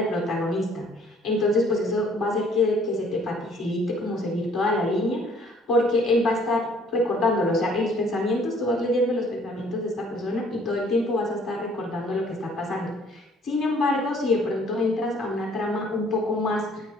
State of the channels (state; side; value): normal; both; correlation 0.59